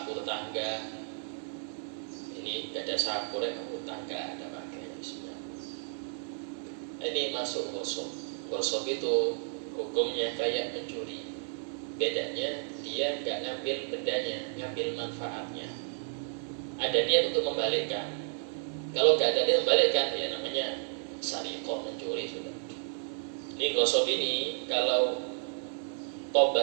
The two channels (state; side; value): silent; left; 56 dB below the other